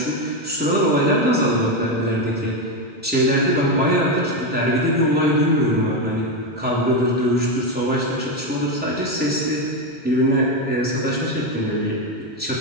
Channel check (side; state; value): both; normal; correlation 0.10